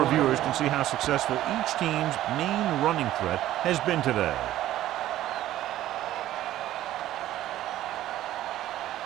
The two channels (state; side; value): quieter; left; 13.8 dB